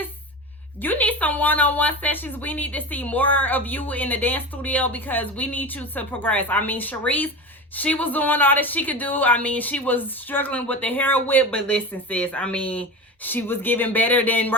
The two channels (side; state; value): both; normal; correlation 0.27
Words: You need some one-on-one sessions. We need to see more of you in the dance studio because we need you to progress. I mean, Sharice, she was doing all that she could do. I mean, she was struggling with the hair whip, but listen, sis, I mean, she was giving better than